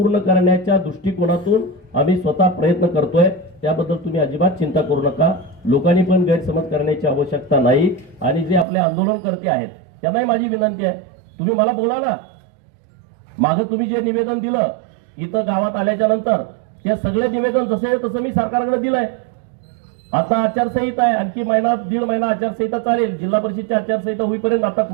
करण्याच्या दृष्टिकोनातून आम्ही स्वतः प्रयत्न करतोय। त्याबद्दल तुम्ही अजिबात चिंता करू नका। लोकांनी पण गैरसमज करण्याची आवश्यकता नाही। आणि जे आपले आंदोलनकर्ते आहेत त्यांनाही माझी विनंती आहे, तुम्ही मला बोला ना। मागे तुम्ही जे निवेदन दिलं इथं गावात आल्याच्या नंतर ते सगळे निवेदन जसे तसं मी सरकारकडे दिलंय। आता आचारसंहिता आहे, आणखी महिना दीड महिना आचारसंहिता चालेल। जिल्हा परिषदची आचारसंहिता होईपर्यंत आता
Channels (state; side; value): drops out; left; at 8.7 s